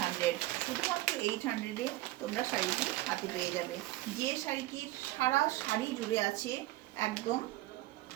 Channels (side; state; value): left; quieter; 17.7 dB